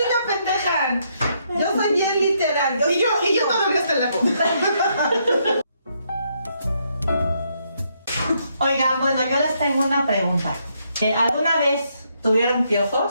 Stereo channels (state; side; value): inverted; both; correlation -0.75